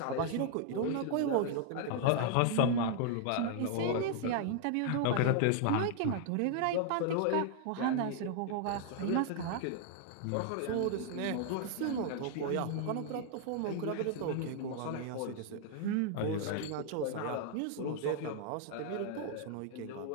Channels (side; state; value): both; different; correlation 0.00